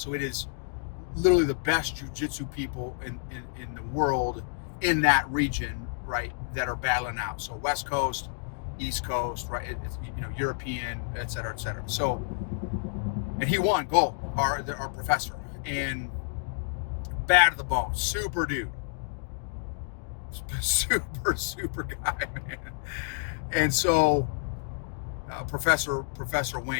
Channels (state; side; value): silent; right; digital silence